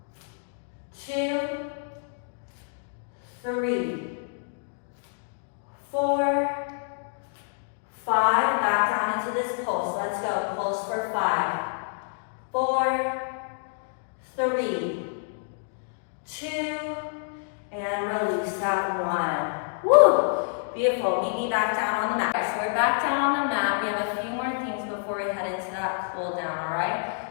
2, 3, 4, 5. Back down into this pulse. Let's go. Pulse for 5. 4, 3, 2, and release that one. Woo! Beautiful. Meet me back down on the mat. So we're back down on the mat. We have a few more things before we head into that cool down, all right?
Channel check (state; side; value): silent; right; digital silence